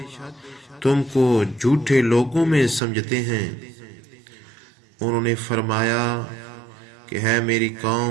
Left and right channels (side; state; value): left; drops out; at 2.8 s